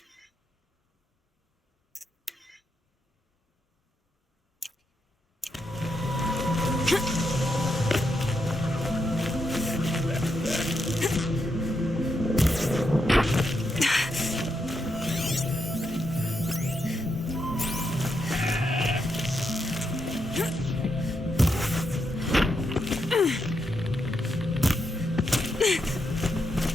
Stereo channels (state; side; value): normal; both; correlation 0.82